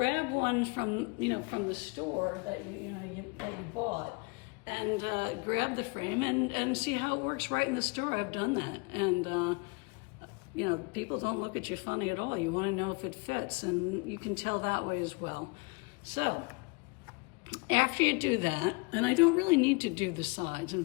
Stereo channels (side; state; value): right; quieter; 29.0 dB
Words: one from the store that you bought, and grab the frame and see how it works right in the store. I've done that, and people don't look at you funny at all. You want to know if it fits, and you can tell that way as well. So after you do that, and I don't really need to do the sides. In